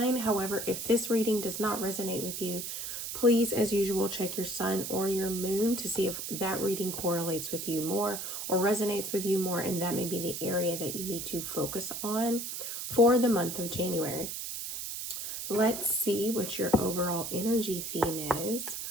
However, if this reading does not resonate with you, please, as usual, check your sun or your moon to see if that reading correlates with you more or resonates with you more, and that may be the area that you need to focus on for the month of January. Let's see what your overall energy theme is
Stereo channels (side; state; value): right; noise; hiss, 6 dB below the sound